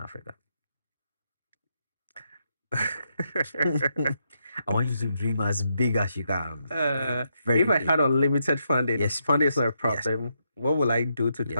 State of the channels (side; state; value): both; inverted; correlation -0.80